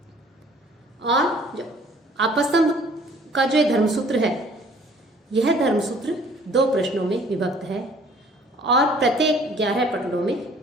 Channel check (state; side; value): normal; both; correlation 0.55